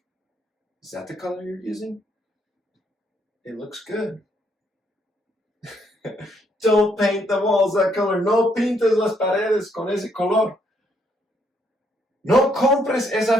is that the color you're using? It looks good. Don't paint the walls that color. No pintes las paredes con ese color. No compres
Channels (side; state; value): both; normal; correlation 0.72